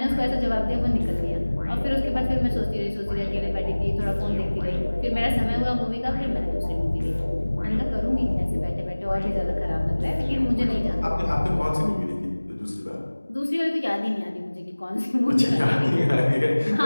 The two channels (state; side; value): inverted; both; correlation -1.00